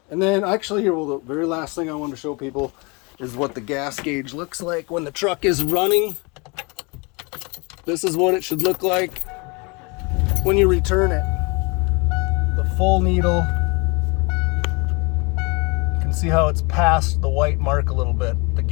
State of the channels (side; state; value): right; quieter; 29.4 dB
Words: And then actually here, the very last thing I want to show people is what the gas gauge looks like when the truck is running. This is what it should look like when you return it. The full needle. You can see how it's past the white mark a little bit. The